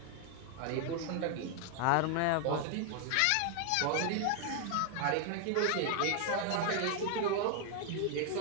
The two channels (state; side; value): different; both; correlation 0.00